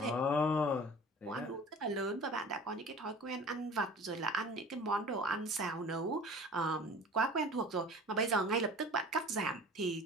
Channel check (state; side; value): normal; both; correlation 0.42